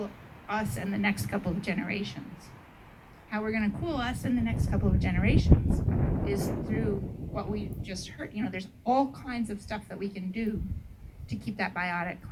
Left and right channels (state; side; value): identical; both; correlation 1.00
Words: us and the next couple of generations. How we're going to cool us in the next couple of generations is through what we just heard. There's all kinds of stuff that we can do to keep that biotic